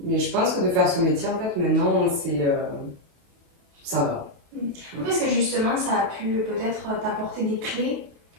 mais je pense que de faire ce métier, en fait, maintenant, ça va. Est-ce que justement, ça a pu peut-être t'apporter des clés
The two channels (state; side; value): late; left; 28 ms